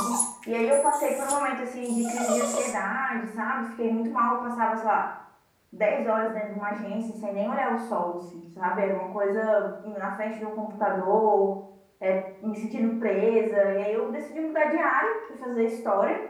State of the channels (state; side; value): identical; both; correlation 1.00